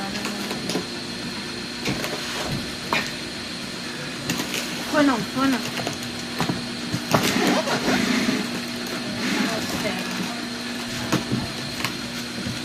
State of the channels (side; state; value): both; identical; correlation 1.00